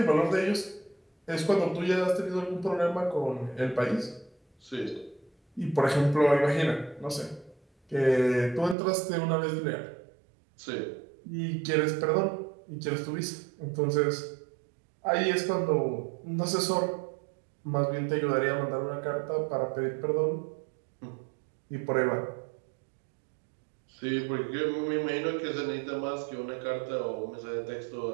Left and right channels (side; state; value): left; drops out; at 8.8 s